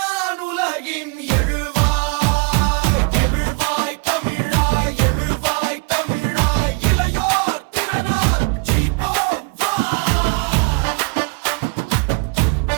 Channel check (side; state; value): left; quieter; 31.1 dB